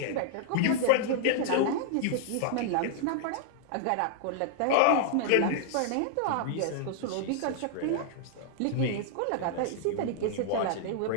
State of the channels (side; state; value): both; different; correlation -0.01